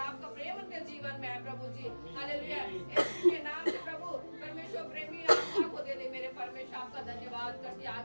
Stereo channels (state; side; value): inverted; both; correlation -1.00